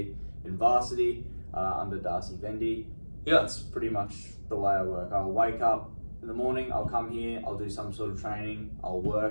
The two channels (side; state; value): both; inverted; correlation -1.00